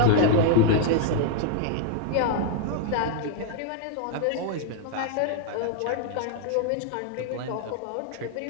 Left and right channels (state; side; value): different; both; correlation 0.00